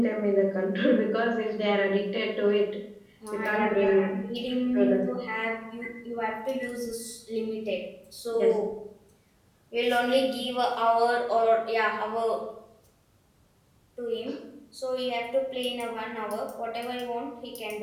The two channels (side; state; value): both; identical; correlation 1.00